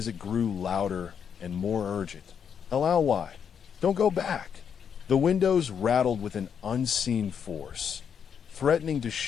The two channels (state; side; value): quieter; right; 7.5 dB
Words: it grew louder and more urgent. "Why? Don't go back." The windows rattled with an unseen force, threatening to